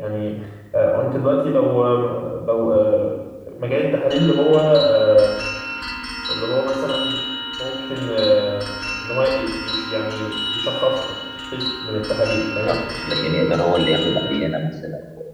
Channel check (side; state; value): both; identical; correlation 1.00